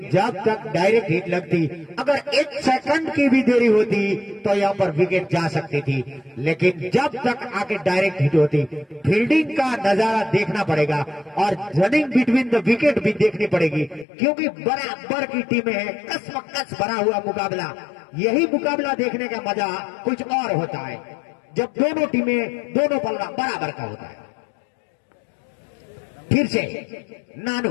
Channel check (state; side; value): drops out; right; at 14.1 s